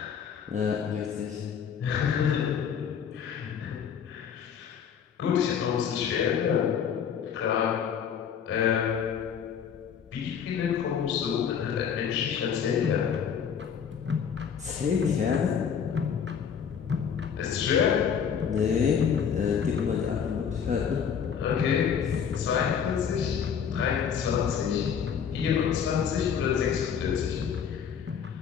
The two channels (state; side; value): quieter; right; 7.5 dB